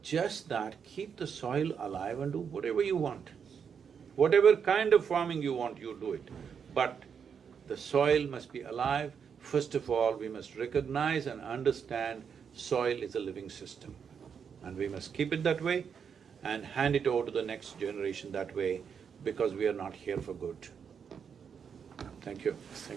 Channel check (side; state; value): left; quieter; 6.9 dB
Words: Just that keep the soil alive and do whatever you want. Whatever kind of farming you want, you do it. But the soil must be alive. First of all, we must recognize and understand soil is a living system. And we must keep it that way and hand it over to the next generation that way, because we are not here for good. Thank you.